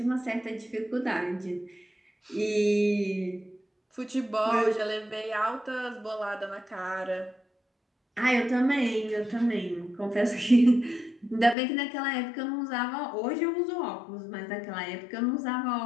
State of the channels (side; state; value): right; drops out; at 11.6 s